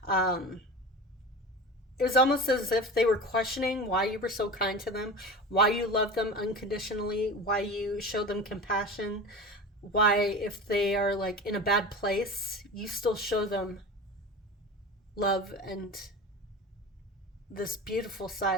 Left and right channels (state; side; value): normal; both; correlation 0.31